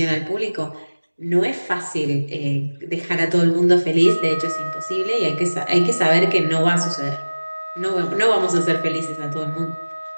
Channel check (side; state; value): both; inverted; correlation -1.00